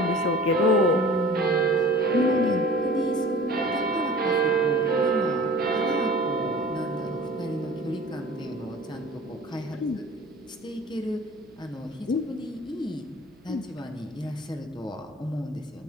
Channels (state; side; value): noise; right; hum, 30 dB below the sound